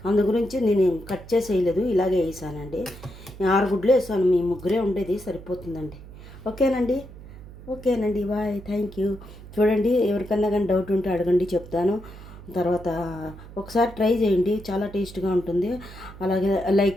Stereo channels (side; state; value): right; noise; hum, 16 dB below the sound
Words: అందు గురించి నేను కట్ చేసి వేయలేదు, ఇలాగే వేసానండి. 6 గుడ్లు వేసాను. మీ ముగ్గురే ఉండేది, సరిపోతుందండి. ఓకేనండి. Bye, thank you. చూడండి ఎవరికన్నా కానీ డౌట్ ఉంటే అడగండి, చెప్తాను. తర్వాత ఒకసారి ట్రై చేయండి, చాలా టేస్ట్గా ఉంటుంది. అలాగే లైక్